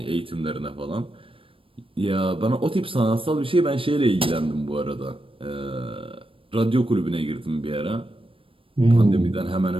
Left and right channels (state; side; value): late; left; 0.26 ms